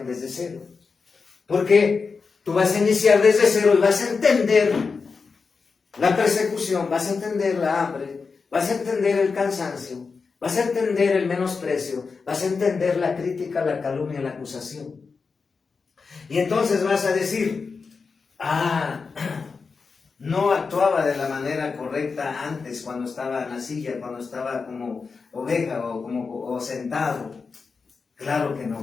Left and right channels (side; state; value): right; quieter; 4.9 dB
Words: desde cero. Porque tú vas a iniciar desde cero y vas a entender la persecución, vas a entender la hambre, vas a entender el cansancio, vas a entender el menosprecio, vas a entender la crítica, la calumnia, la acusación. Y entonces vas a decir, no actuaba de la manera correcta antes, cuando estaba en la silla, cuando estaba como oveja o sentado. Claro que